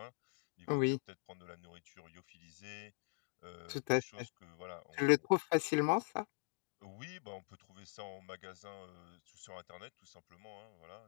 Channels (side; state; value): right; silent; digital silence